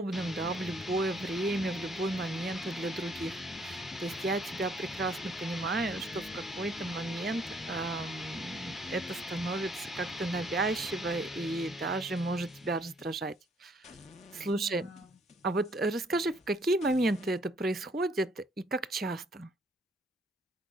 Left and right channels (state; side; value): normal; both; correlation 0.65